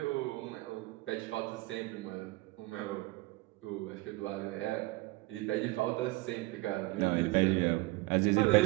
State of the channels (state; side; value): quieter; left; 21.2 dB